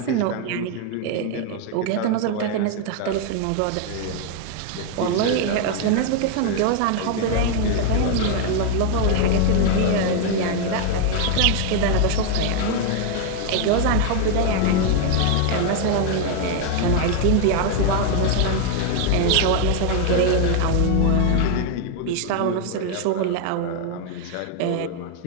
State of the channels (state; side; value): different; both; correlation 0.00